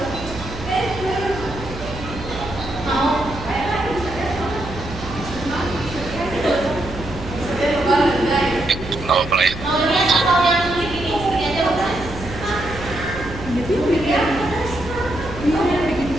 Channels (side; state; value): right; noise; hum, 11 dB below the sound